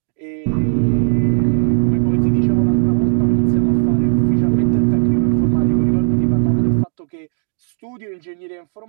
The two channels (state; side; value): silent; left; digital silence